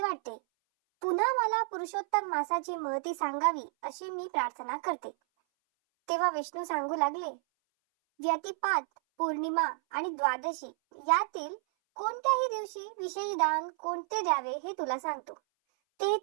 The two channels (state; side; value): silent; left; 57 dB below the other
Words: वाटते. पुन्हा मला पुरुषोत्तम मासाची महती सांगावी अशी मी प्रार्थना करते. तेव्हा विष्णू सांगू लागले, व्यतिपात, पौर्णिमा आणि द्वादशी यातील कोणत्याही दिवशी विशेष दान कोणते द्यावे हे तुला सांगतो.